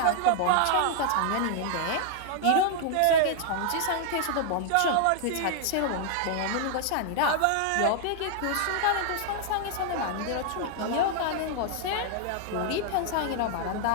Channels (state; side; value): different; both; correlation 0.00